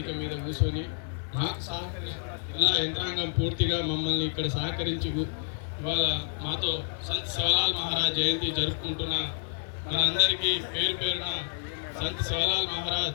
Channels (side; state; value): right; silent; 56 dB below the other